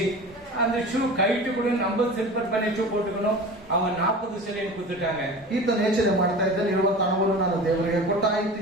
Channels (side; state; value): both; normal; correlation 0.35